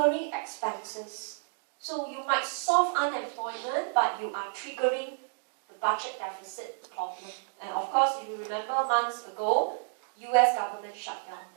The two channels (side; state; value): left; silent; digital silence